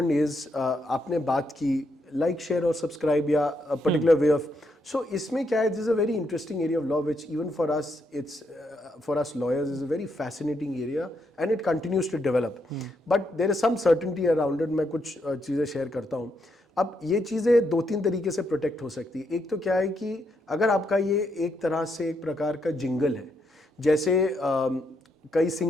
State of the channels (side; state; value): both; normal; correlation 0.78